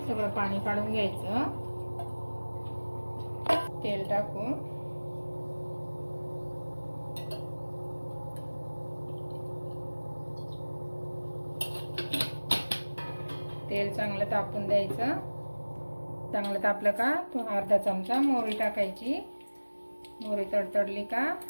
सगळं पाणी काढून घ्यायचं। तेल टाकून तेल चांगलं तापून द्यायचं। चांगलं तापलं का तो अर्धा चमचा मोहरी टाकायची। मोहरी तडतडली का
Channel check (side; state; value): both; inverted; correlation -1.00